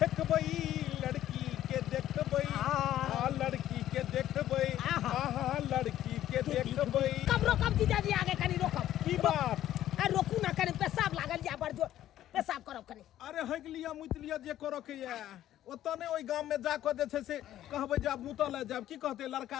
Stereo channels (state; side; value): quieter; right; 12.6 dB